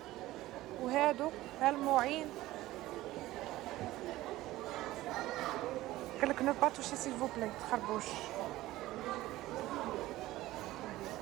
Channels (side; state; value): left; quieter; 16.7 dB